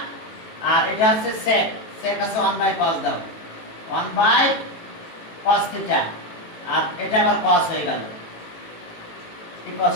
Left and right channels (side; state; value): right; late; 18 ms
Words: আর এটা আছে sec আছে 1 by cos দাও 1 by cos থিটা আর এটা আবার cos হয়ে গেল